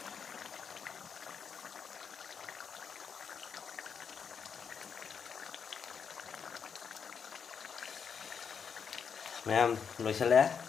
mày em lôi xe lé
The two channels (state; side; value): quieter; right; 6.6 dB